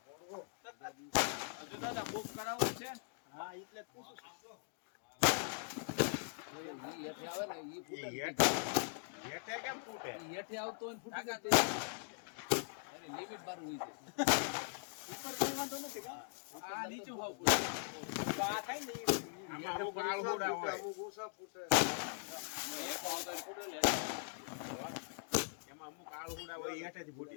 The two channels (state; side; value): silent; right; digital silence